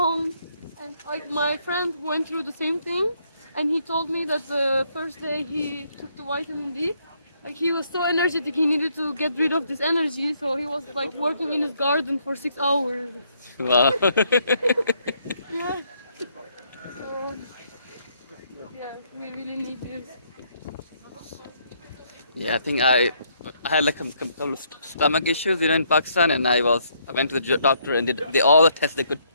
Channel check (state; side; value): inverted; both; correlation -0.71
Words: and like my friend went through the same thing, and he told me that the first day he took the vitamin D, like he was so energetic, he needed to get rid of this energy, so he was like working in his garden for 6 hours. Wow. Yeah. So yeah, we really need this. Yeah, I think I had like a couple of stomach issues, in Pakistan, and I went to the doctor and did all the tests they could,